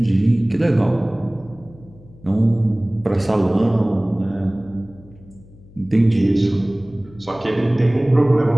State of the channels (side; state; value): left; noise; hum, 23 dB below the sound